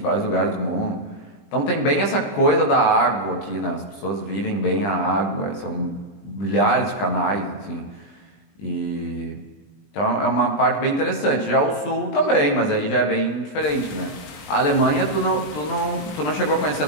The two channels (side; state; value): right; late; 20 ms